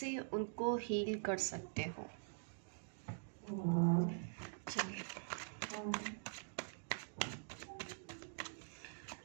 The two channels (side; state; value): left; silent; digital silence